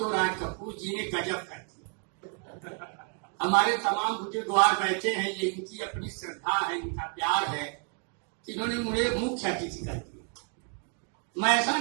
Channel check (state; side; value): quieter; left; 38.5 dB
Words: राज कपूर जी ने गजब कर दिया। हमारे तमाम बुजुर्गवार बैठे हैं, ये इनकी अपनी श्रद्धा है, इनका प्यार है कि इन्होंने मुझे मुख्य अतिथि कर दिया। मैं ऐसा